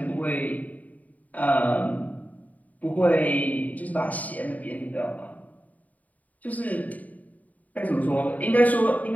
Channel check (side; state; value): right; late; 0.074 ms